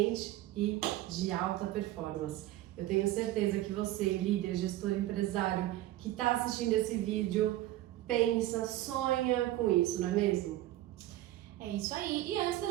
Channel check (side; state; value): left; quieter; 15.2 dB